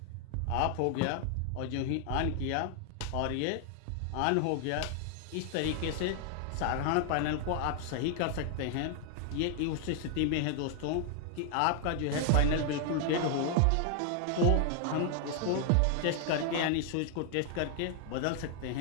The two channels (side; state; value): both; different; correlation 0.00